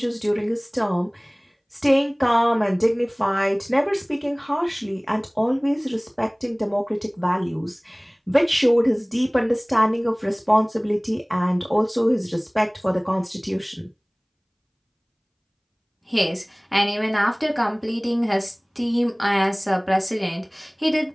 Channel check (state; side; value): identical; both; correlation 1.00